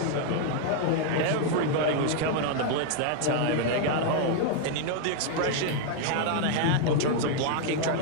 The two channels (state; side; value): different; both; correlation 0.00